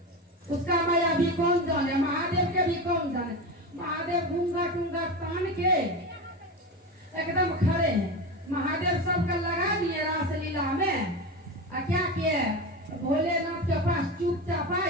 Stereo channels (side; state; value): both; normal; correlation 0.22